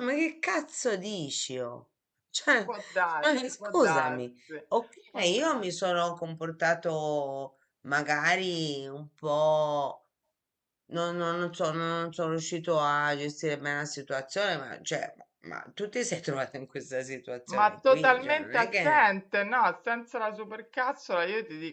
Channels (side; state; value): both; identical; correlation 1.00